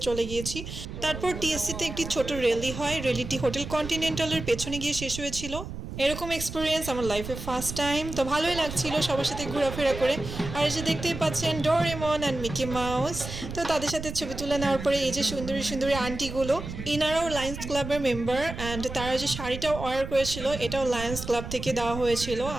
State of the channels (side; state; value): right; noise; rumble, 8 dB below the sound